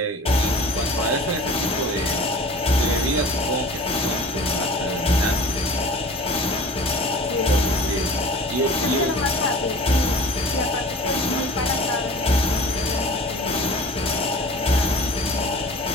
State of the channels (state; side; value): normal; both; correlation 0.42